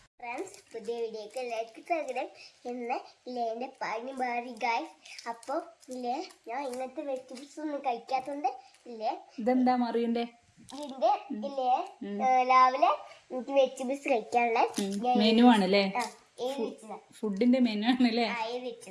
ഫ്രണ്ട്സ്, പുതിയ വീഡിയോക്ക് ലൈക്ക് തരണം എന്ന് എൻ്റെ പണി മാറി ഗൈസ്. അപ്പോൾ ഇല്ലേ ഞാൻ ഇന്നത്തെ വെജിറ്റബിൾസ് ഒന്നും കഴിക്കാത്തതുകൊണ്ട് ഇല്ലേ ഇതെന്താ മറിയണ്ടേ ഇതിന്റെ ഇല്ലേ രാവിലെ എനിക്ക് വെജിറ്റബിൾസ് കഴിക്കാനുള്ള മെനു ആണല്ലേ, ഫുഡിന്റെ മെനു ആണല്ലേ.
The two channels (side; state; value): both; identical; correlation 1.00